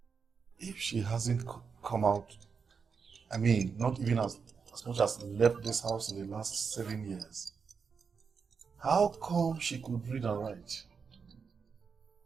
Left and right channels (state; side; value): quieter; left; 5.7 dB